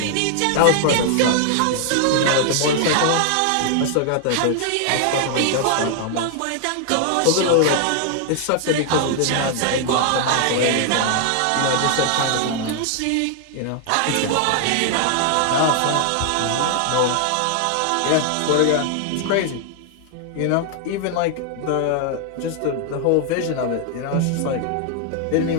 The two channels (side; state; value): both; different; correlation 0.00